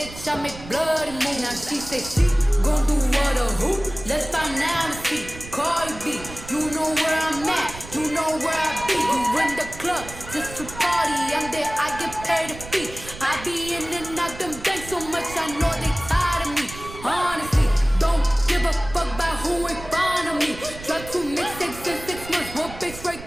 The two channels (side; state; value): right; noise; rumble, 14 dB below the sound